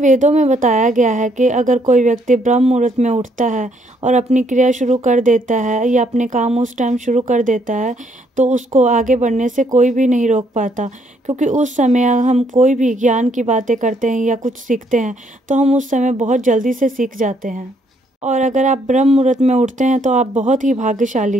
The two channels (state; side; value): normal; both; correlation 0.70